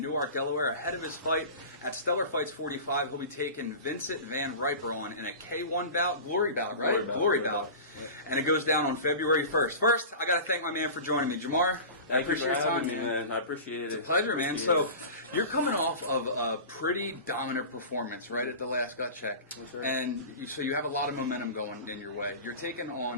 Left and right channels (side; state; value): both; inverted; correlation -0.33